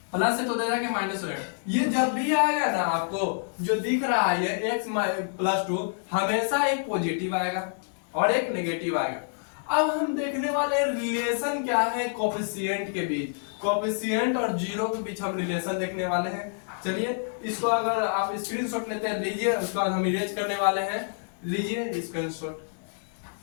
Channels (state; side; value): silent; right; digital silence